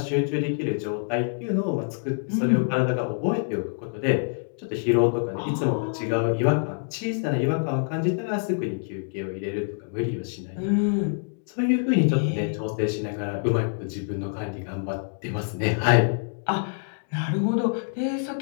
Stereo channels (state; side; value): silent; right; digital silence